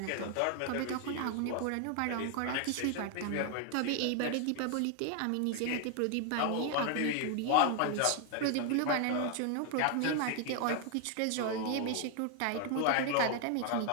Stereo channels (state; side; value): different; both; correlation 0.00